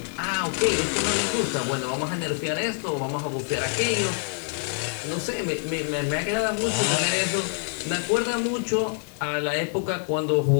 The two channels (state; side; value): silent; right; 61 dB below the other